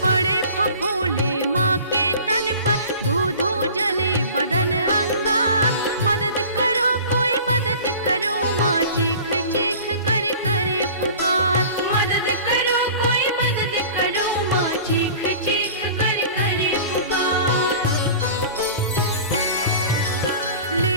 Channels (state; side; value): inverted; both; correlation -0.42